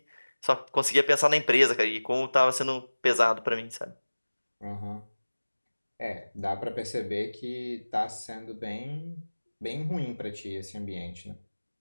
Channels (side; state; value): both; inverted; correlation -1.00